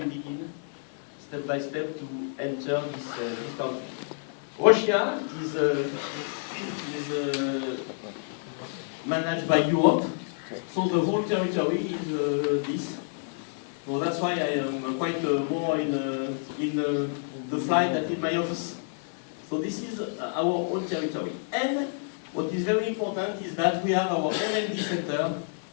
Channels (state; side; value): silent; right; 59 dB below the other